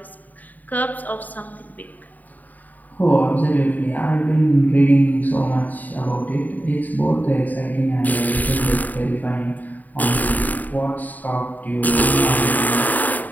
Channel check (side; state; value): right; late; 0.081 ms